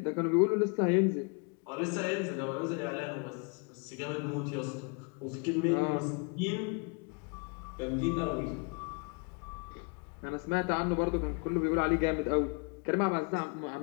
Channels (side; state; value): right; quieter; 36.0 dB